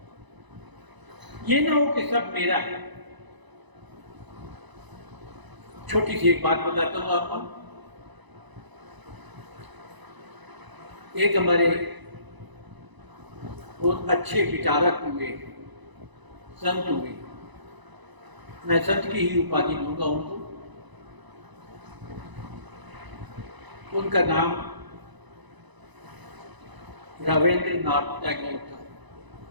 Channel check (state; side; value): late; left; 1.0 ms